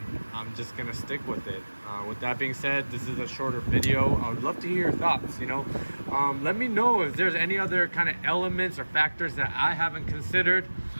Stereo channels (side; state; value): both; inverted; correlation -1.00